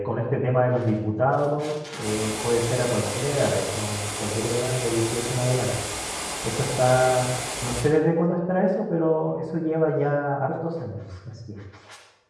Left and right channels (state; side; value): identical; both; correlation 1.00